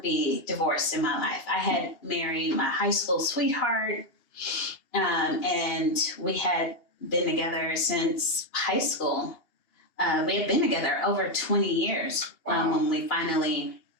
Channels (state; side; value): late; right; 2.8 ms